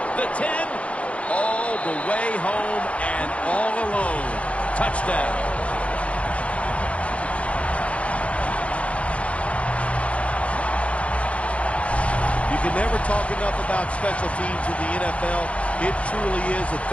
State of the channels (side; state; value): right; late; 0.063 ms